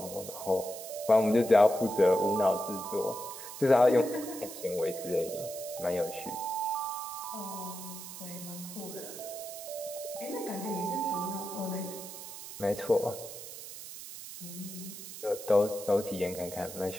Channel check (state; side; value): noise; right; hiss, 11 dB below the sound